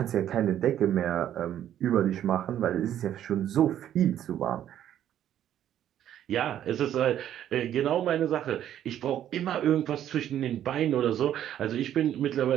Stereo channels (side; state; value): left; quieter; 11.0 dB